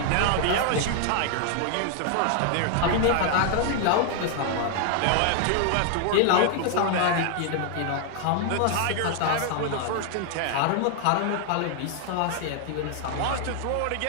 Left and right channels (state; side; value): different; both; correlation 0.00